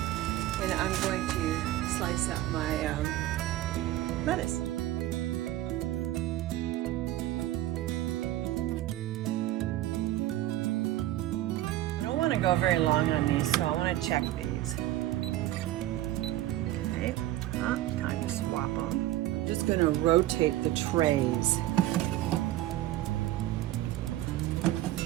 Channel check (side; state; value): left; quieter; 14.9 dB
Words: and I'm going to slice up my lettuce. I don't want to go very long on these, so I want to check these. Okay, time to swap them. I'm just going to rotate the trays.